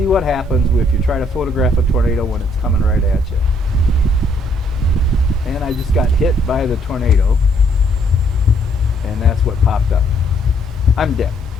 what happens if you try to photograph a tornado when it's coming right at you. And I just got hit by the tornado, and that's what popped up. I'm dead.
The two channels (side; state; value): both; normal; correlation 0.68